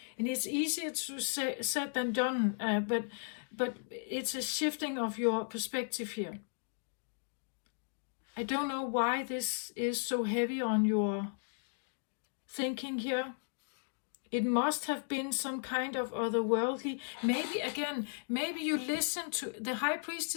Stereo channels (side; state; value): right; silent; digital silence